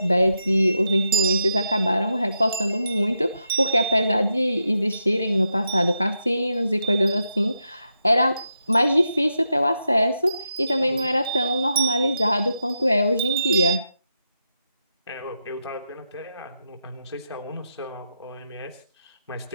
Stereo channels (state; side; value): inverted; both; correlation -0.85